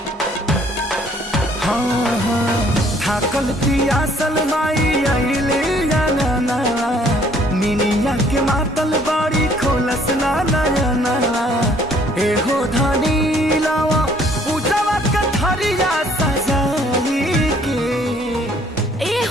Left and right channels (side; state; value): both; normal; correlation 0.61